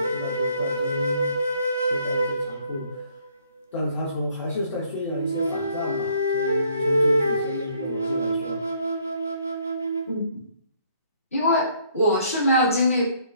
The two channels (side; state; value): both; inverted; correlation -0.64